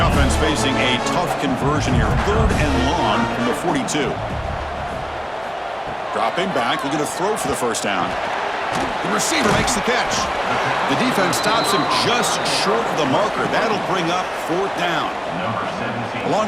offense facing a tough conversion here. 3rd and long from the 42. Dropping back, looking to throw for the 1st down. The receiver makes the catch. The defense stops him just short of the marker. That'll bring up 4th down. The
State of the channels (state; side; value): identical; both; correlation 1.00